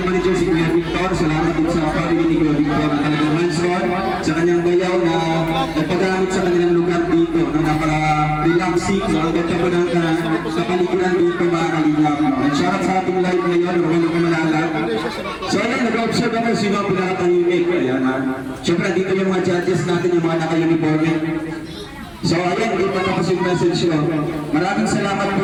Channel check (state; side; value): identical; both; correlation 1.00